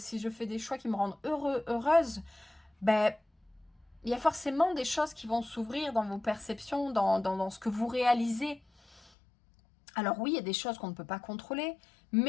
je fais des choix qui me rendent heureuse, ben, il y a forcément des choses qui vont s'ouvrir dans vos perceptions, dans ce que vous réalisez. Alors oui, il y a des choses qu'on ne peut pas contrôler,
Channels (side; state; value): right; drops out; at 9.1 s